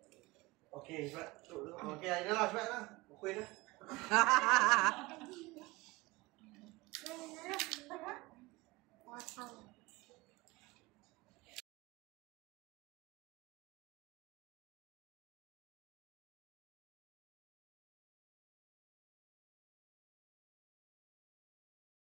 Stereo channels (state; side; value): quieter; left; 22.4 dB